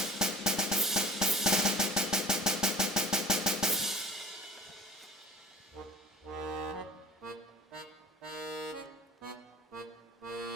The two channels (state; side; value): normal; both; correlation 0.40